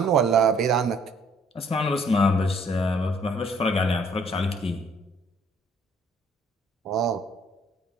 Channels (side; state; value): both; normal; correlation 0.61